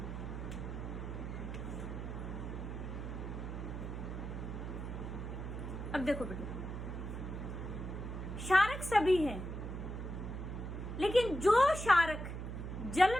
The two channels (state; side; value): noise; right; hum, 6 dB below the sound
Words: अब देखो बेटे, क्षारक सभी हैं, लेकिन जो क्षारक जल